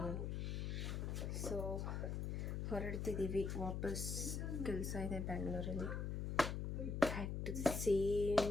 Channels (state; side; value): noise; left; hum, 1 dB below the sound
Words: ನಾನು. ಸೊ ಹೊರಡ್ತಿದ್ದೀವಿ ವಾಪಸ್, ಕೆಲಸ ಇದೆ ಬ್ಯಾಂಗ್ಳೂರಲ್ಲಿ. Back to the